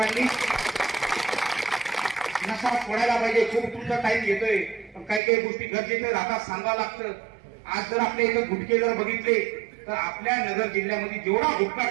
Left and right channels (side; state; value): left; drops out; at 5.2 s